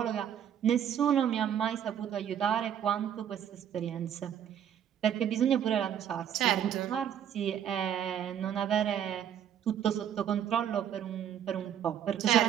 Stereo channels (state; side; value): quieter; left; 9.5 dB